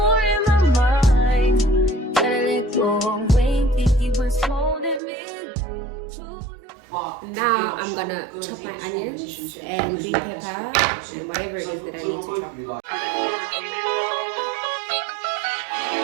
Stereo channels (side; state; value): left; drops out; at 5.0 s